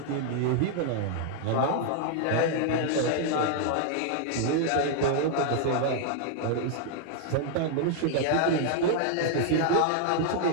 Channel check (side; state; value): both; different; correlation 0.00